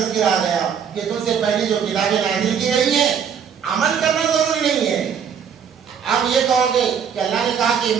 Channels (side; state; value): left; quieter; 7.5 dB